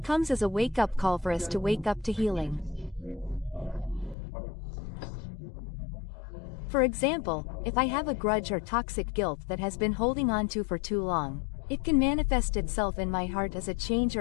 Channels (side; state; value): right; drops out; at 4.2 s